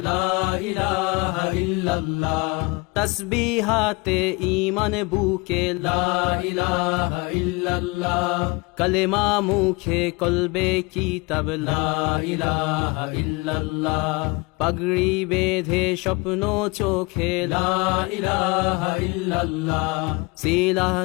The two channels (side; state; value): right; quieter; 26.2 dB